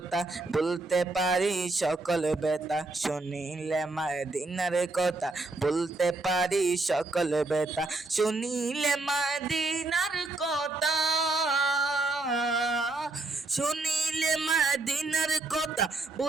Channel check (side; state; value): left; quieter; 3.2 dB